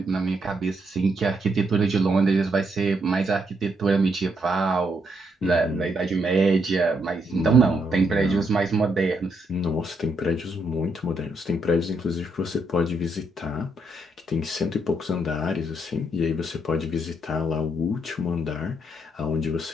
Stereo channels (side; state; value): both; normal; correlation 0.76